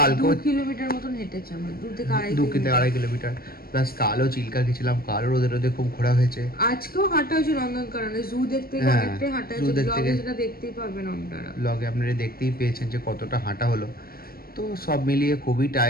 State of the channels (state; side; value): late; right; 0.44 ms